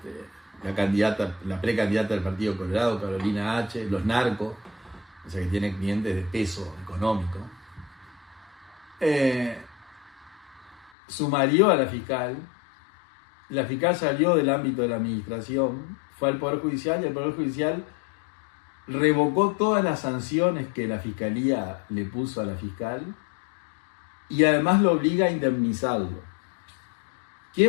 la precandidata del Partido Colorado, Carolina H., los narcos, o sea que tiene clientes de peso económico, sumarió a la fiscal salió del ámbito de la administración, fue al Poder Judicial y el Poder Judicial revocó todas las sanciones que la Fiscalía le puso a la fiscal y además lo obliga a indemnizarlo.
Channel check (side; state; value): right; drops out; at 10.9 s